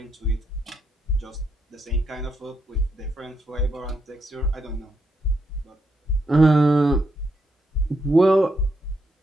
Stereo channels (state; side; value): normal; both; correlation 0.78